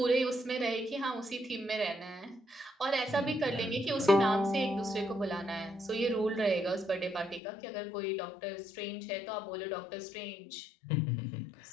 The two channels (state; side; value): drops out; right; at 7.4 s